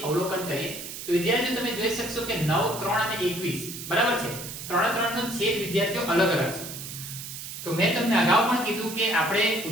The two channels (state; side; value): noise; right; hiss, 9 dB below the sound